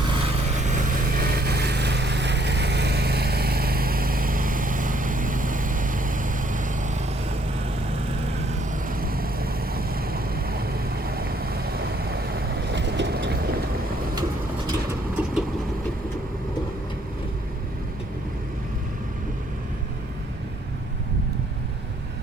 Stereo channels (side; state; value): both; normal; correlation 0.66